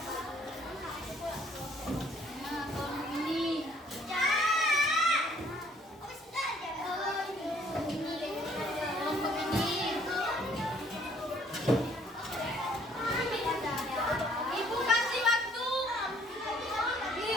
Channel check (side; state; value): both; normal; correlation 0.62